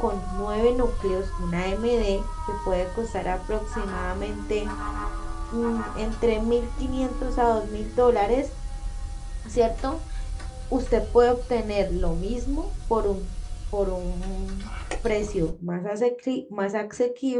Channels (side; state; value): both; identical; correlation 1.00